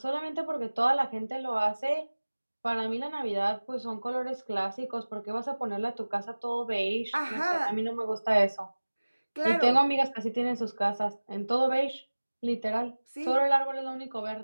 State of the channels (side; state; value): both; inverted; correlation -1.00